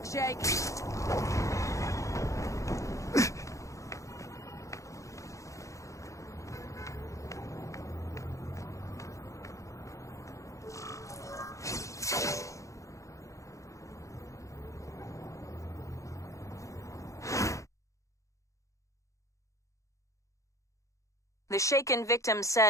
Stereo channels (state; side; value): late; right; 0.15 ms